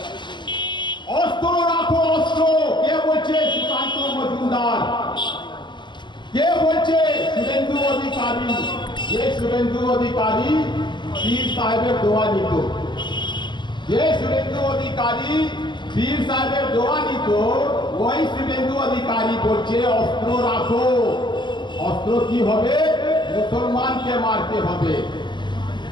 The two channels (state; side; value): late; right; 0.22 ms